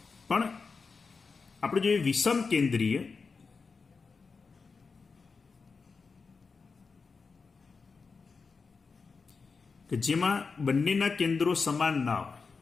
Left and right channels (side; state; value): right; quieter; 4.8 dB